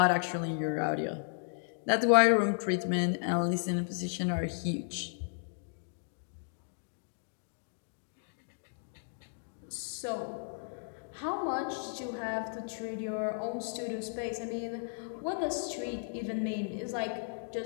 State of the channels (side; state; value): right; silent; digital silence